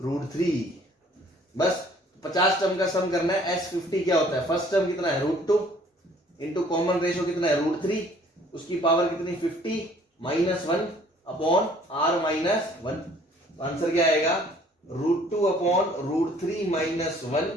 √3। बस 50 टर्म का सम करना है। S50 क्या होता है, फर्स्ट टर्म कितना है √2 इंटू कॉमन रेशियो कितना है √3, उसकी पावर कितनी 50 -1 अपॉन r -1। तो आंसर क्या आएगा √2 अपॉन √3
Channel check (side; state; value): both; normal; correlation 0.57